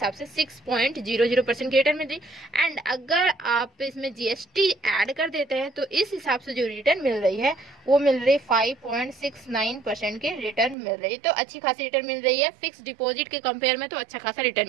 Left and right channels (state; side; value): drops out; left; at 10.8 s